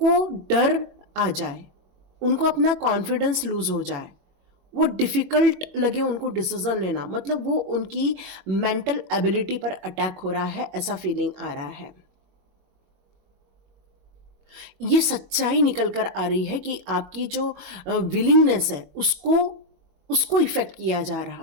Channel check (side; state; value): left; late; 22 ms